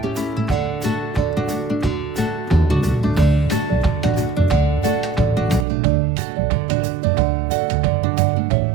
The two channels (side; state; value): left; drops out; at 5.7 s